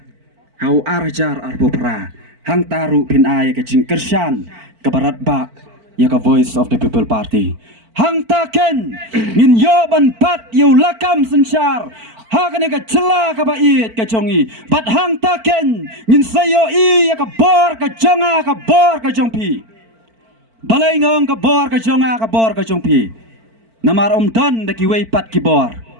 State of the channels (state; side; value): late; left; 4.5 ms